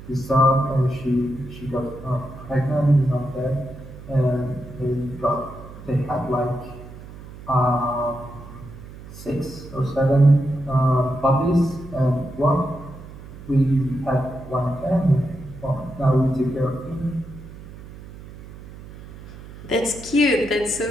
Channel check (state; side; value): noise; right; hum, 16 dB below the sound